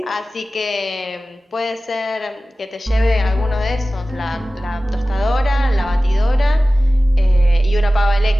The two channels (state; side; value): normal; both; correlation 0.96